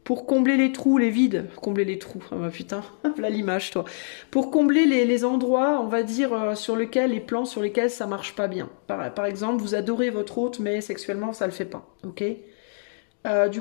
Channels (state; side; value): silent; right; digital silence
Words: Pour combler les trous, les vides, combler les trous, ah bah putain, voilà l'image toi. Pour combler les endroits, on va dire, sur lesquels, les plans sur lesquels ça marche pas bien. Par exemple, vous adorez votre hôte, mais sexuellement ça le fait pas, ok.